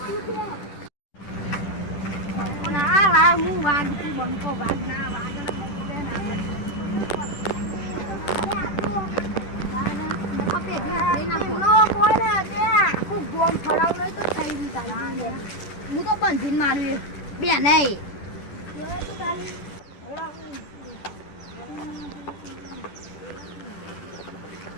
બંકો વાગ ના વાગ હું તો બંધીને માર્યું બે નહીં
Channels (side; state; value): right; late; 10 ms